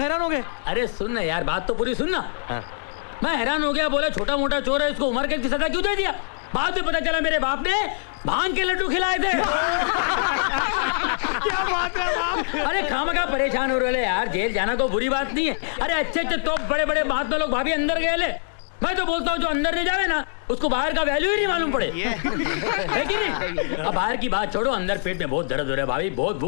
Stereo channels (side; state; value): right; silent; digital silence